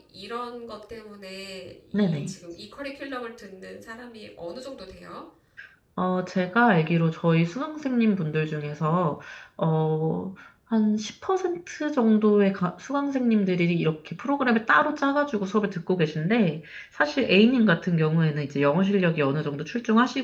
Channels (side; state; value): both; identical; correlation 1.00